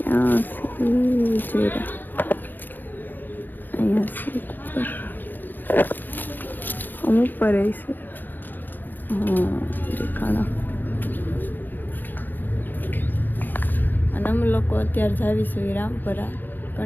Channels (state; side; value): late; right; 0.088 ms